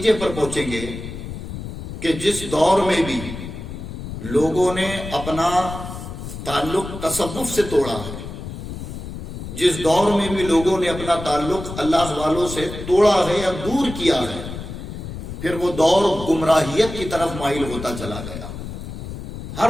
پر پہنچیں گے کہ جس دور میں بھی لوگوں نے اپنا تعلق تصوف سے توڑا ہے، جس دور میں بھی لوگوں نے اپنا تعلق اللہ والوں سے توڑا ہے یا دور کیا ہے، پھر وہ دور گمراہیت کی طرف مائل ہوتا چلا گیا۔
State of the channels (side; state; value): left; noise; rumble, 9 dB below the sound